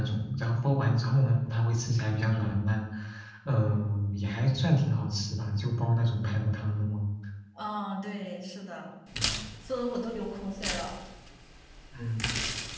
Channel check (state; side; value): identical; both; correlation 1.00